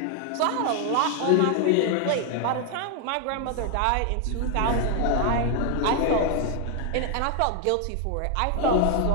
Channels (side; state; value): both; different; correlation 0.00